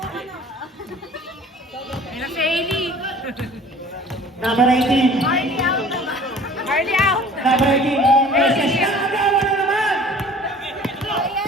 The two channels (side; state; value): both; normal; correlation 0.48